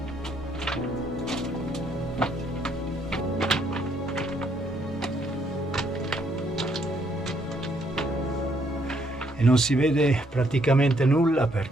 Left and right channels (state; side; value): normal; both; correlation 0.70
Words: Non si vede praticamente nulla